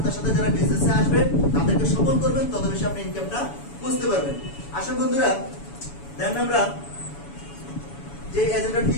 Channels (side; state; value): right; late; 7.1 ms